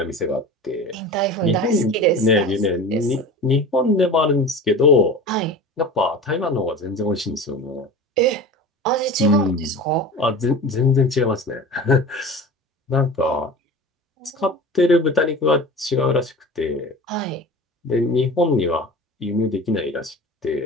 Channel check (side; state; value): both; normal; correlation 0.35